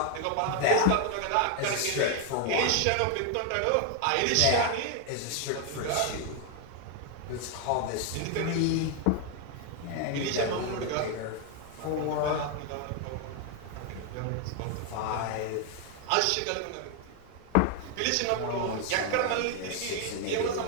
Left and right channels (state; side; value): different; both; correlation 0.01